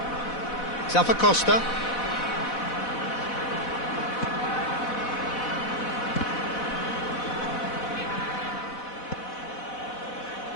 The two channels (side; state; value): right; late; 4.1 ms